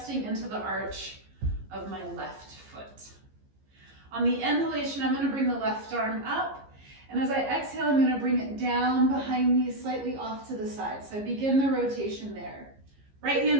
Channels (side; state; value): left; late; 15 ms